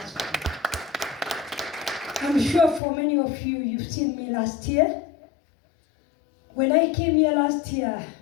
I'm sure for many of you, you've seen me last year. When I came here last year,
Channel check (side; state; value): right; drops out; at 2.8 s